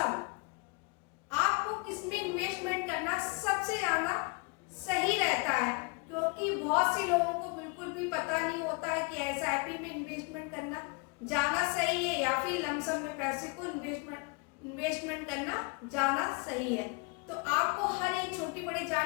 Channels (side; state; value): right; quieter; 31.5 dB